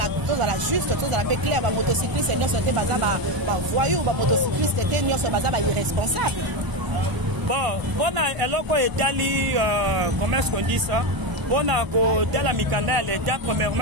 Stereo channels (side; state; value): left; late; 1.0 ms